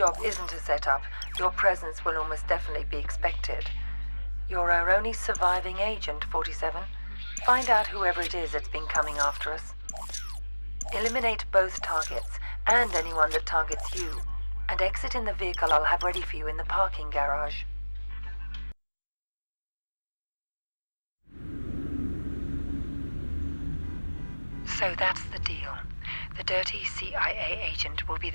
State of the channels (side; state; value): both; inverted; correlation -1.00